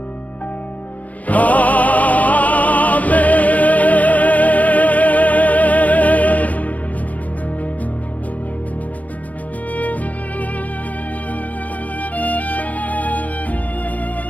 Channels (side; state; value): right; late; 0.074 ms